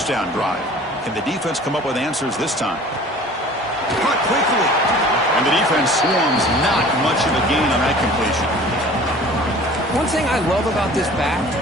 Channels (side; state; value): both; normal; correlation 0.46